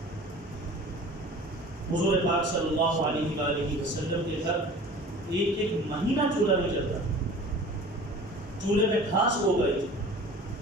حضور پاک صلی اللہ علیہ وآلہ وسلم کے گھر ایک ایک مہینہ چولہا نہیں چلتا، چولہے میں گھاس ہو گئی،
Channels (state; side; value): normal; both; correlation 0.42